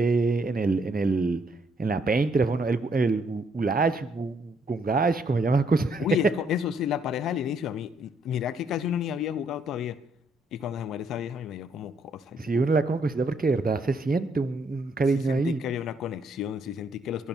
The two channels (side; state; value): both; normal; correlation 0.70